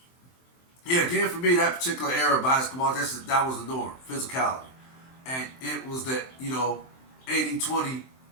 yeah, again for me, that particular era of basketball, that was the norm, physicality, and it was that 80-20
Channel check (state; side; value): late; right; 23 ms